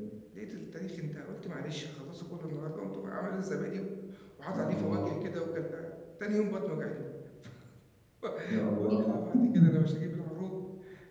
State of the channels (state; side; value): identical; both; correlation 1.00